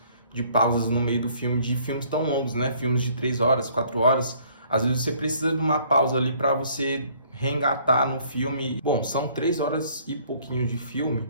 de pausas no meio do filme, de filmes tão longos, né? Filmes de 3 horas, 4 horas, às vezes você precisa de uma pausa ali para você reengatar no filme. Bom, são 3 horas e pouquinho de filme,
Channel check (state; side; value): inverted; both; correlation -0.60